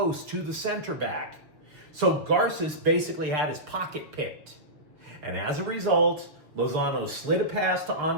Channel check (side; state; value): left; late; 6.3 ms